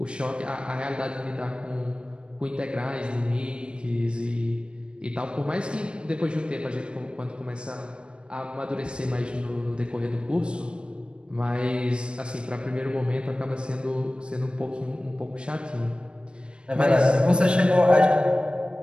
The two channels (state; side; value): late; left; 0.055 ms